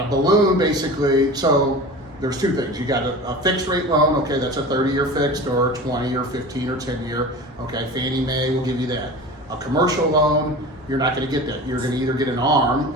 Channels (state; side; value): normal; both; correlation 0.34